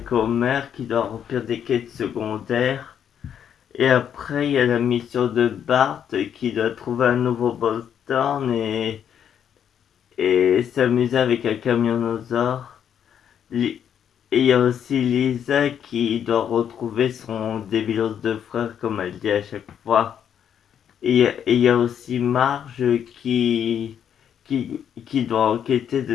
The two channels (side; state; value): right; quieter; 8.8 dB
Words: Homer qui doit remplir des quêtes secondaires. Et après, il y a la mission de Bart qui doit trouver un nouveau Boston et s'amuser avec un camionosaure. Et il y a aussi Lisa qui doit retrouver son débilos de frère, comme elle dit à chaque fois. Et il y a aussi Marge qui doit enquêter